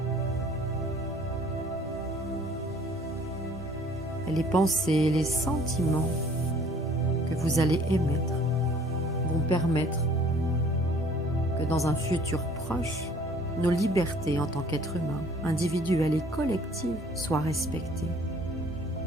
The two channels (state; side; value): normal; both; correlation 0.55